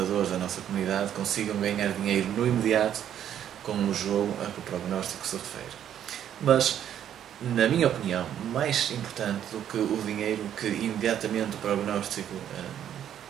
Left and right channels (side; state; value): left; quieter; 10.1 dB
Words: da nossa comunidade consigam ganhar dinheiro no imediato com o jogo a que o prognóstico se refere. Mas, na minha opinião, mais importante do que o dinheiro que imediatamente o prognóstico